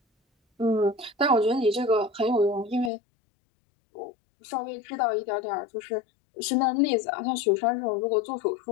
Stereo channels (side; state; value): right; drops out; at 2.9 s